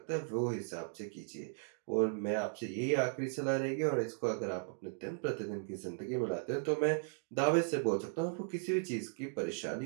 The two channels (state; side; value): silent; left; digital silence